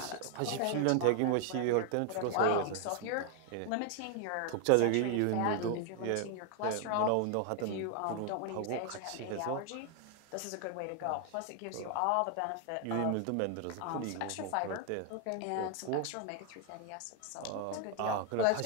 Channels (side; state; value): both; different; correlation 0.00